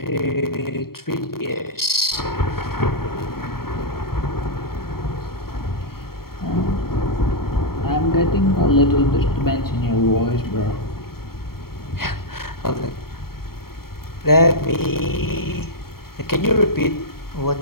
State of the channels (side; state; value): right; late; 0.94 ms